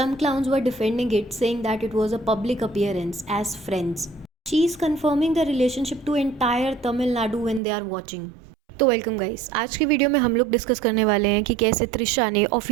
clowns were defending it, saying that it was a public appearance as friends. She is confirming the relationship to entire Tamil Nadu when they are watching. तो welcome guys, आज की video में हम लोग discuss करने वाले हैं कि कैसे त्रिशा ने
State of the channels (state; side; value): drops out; left; at 7.6 s